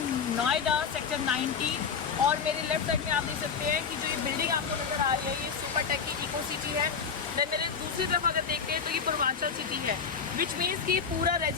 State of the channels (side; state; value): right; quieter; 6.2 dB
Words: Noida sector 90 और मेरे लेफ्ट साइड में आप देख सकते हैं कि जो ये बिल्डिंग आपको नजर आ रही है ये सुपर टेक की इको सिटी है। देन मेरे दूसरी तरफ अगर देखते हैं तो ये पूर्वांचल सिटी है, विच मीन्स कि पूरा